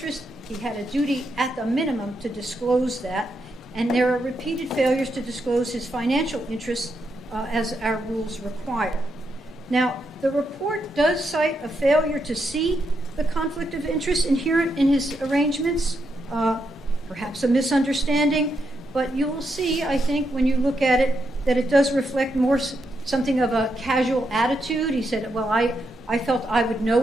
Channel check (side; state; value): both; normal; correlation 0.81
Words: he had a duty at the minimum to disclose that. And there are repeated failures to disclose his financial interests as our rules require. Now, the report does cite a failure to see the conflict of interest inherent in his arrangements, perhaps a misunderstanding, but you will see, I think, when you look at it, that it does reflect more something of a casual attitude. He said, well, I felt I would